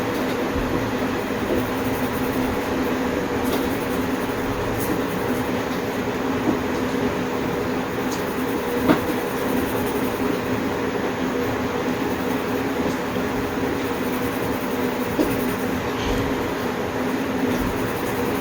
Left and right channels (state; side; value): identical; both; correlation 1.00